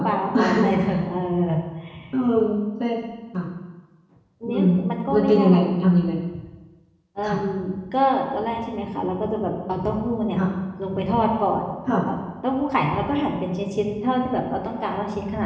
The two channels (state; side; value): identical; both; correlation 1.00